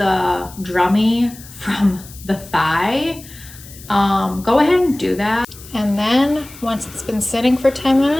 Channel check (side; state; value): left; noise; hiss, 19 dB below the sound